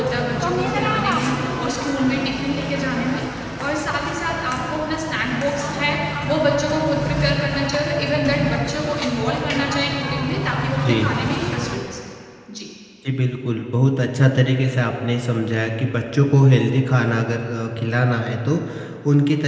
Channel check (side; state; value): both; identical; correlation 1.00